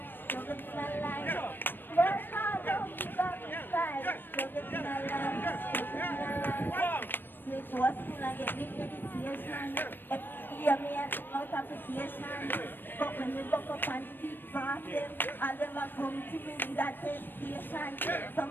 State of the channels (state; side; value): late; right; 0.095 ms